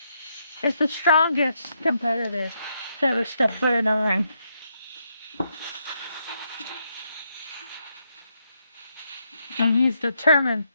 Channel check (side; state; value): both; inverted; correlation -0.78